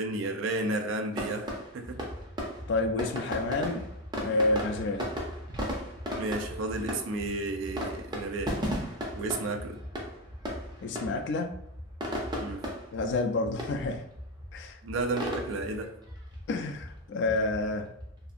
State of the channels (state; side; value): normal; both; correlation 0.07